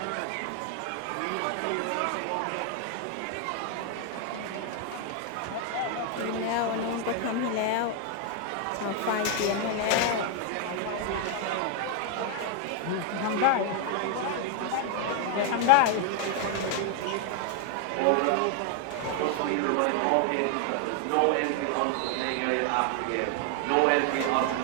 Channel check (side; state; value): both; different; correlation 0.00